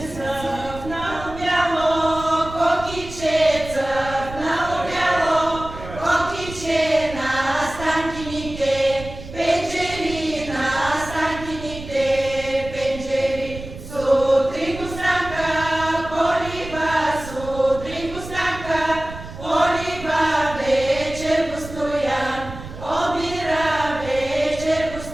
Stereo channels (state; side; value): noise; right; rumble, 12 dB below the sound